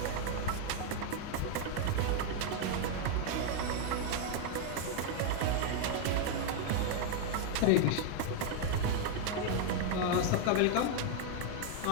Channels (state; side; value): different; both; correlation 0.00